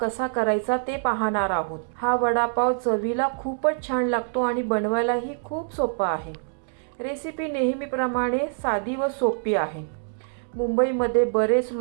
करायचा ते पाहणार आहोत। हा वडापाव चवीला खूपच छान लागतो आणि बनवायलाही खूप सोपा आहे। रेसिपी नेहमीप्रमाणे साधी व सोपी आहे। मुंबईमध्ये बरेच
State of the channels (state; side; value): silent; left; digital silence